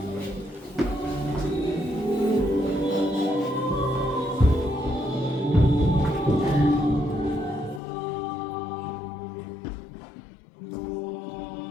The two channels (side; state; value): right; drops out; at 7.8 s